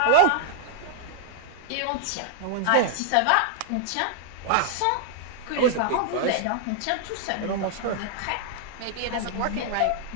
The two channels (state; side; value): different; both; correlation -0.01